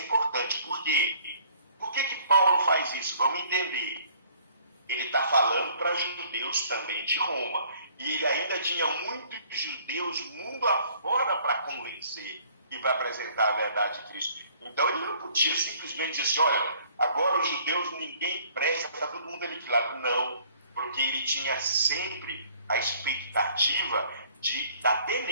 importante. Por quê? Por que Paulo faz isso? Vamos entender. Ele está falando para judeus também de Roma. E ele ainda tinha muitos judeus mundo afora para convencer e para apresentar a verdade de Cristo. Então ele não podia simplesmente dizer assim, olha, agora os judeus ninguém presta, está todo mundo aniquilado. Não, porque ele tinha sempre a expectativa da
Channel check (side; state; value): both; inverted; correlation -0.58